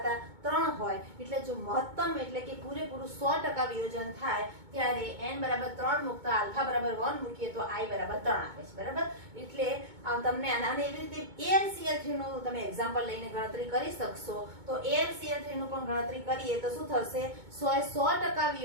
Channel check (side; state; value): left; late; 2.2 ms